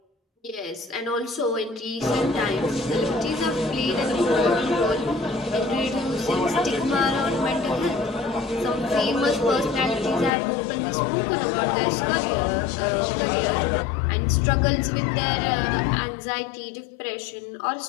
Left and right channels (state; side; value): drops out; right; at 10.3 s